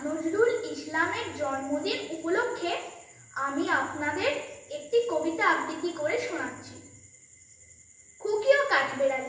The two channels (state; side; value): identical; both; correlation 1.00